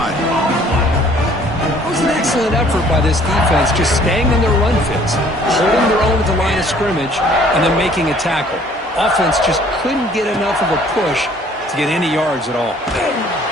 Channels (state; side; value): normal; both; correlation 0.57